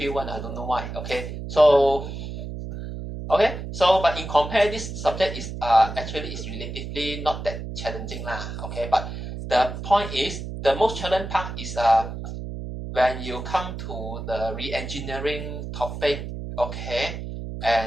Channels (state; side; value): noise; right; hum, 7 dB below the sound